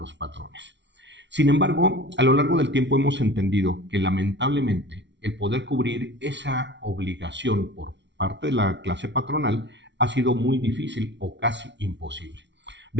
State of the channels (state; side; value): late; left; 0.51 ms